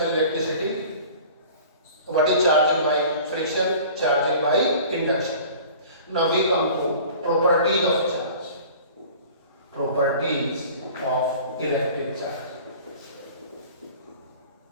electricity, what is charging by friction, charging by induction. Now we come to properties of charge, properties of electric charge.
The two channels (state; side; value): inverted; both; correlation -0.44